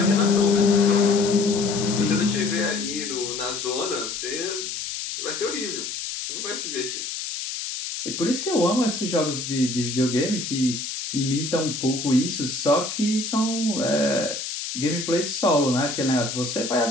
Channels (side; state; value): left; noise; hiss, 6 dB below the sound